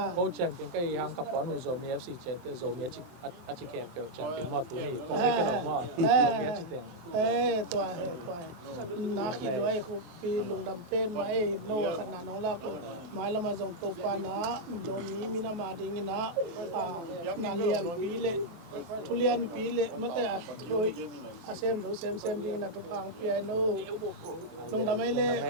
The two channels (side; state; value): left; late; 23 ms